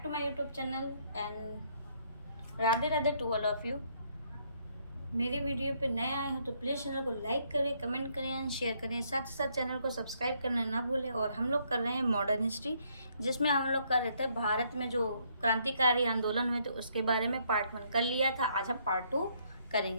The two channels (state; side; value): inverted; both; correlation -0.70